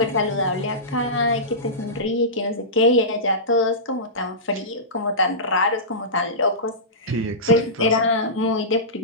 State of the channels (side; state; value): both; normal; correlation -0.18